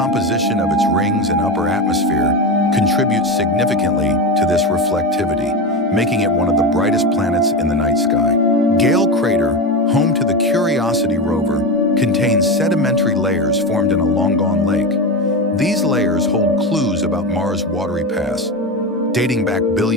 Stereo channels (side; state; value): both; normal; correlation 0.19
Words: of its rings and upper atmosphere contributes significantly to this reflectivity, making it one of the brightest planets in the night sky. Gale Crater, home to the Curiosity rover, contains sedimentary layers formed in a long-gone lake. These layers hold clues about Mars' watery past, dating back